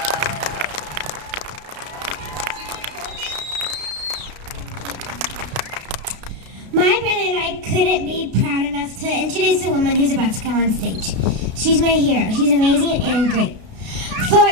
My brother and I couldn't be proud enough to introduce the woman who's about to come on stage. She's my hero. She's amazing and great. For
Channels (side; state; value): left; late; 33 ms